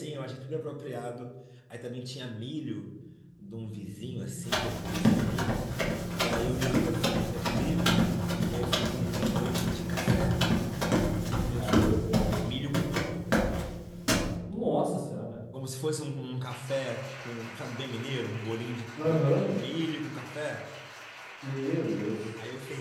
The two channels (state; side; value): identical; both; correlation 1.00